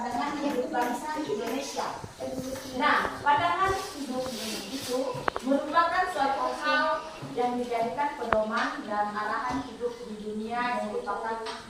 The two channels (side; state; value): both; identical; correlation 1.00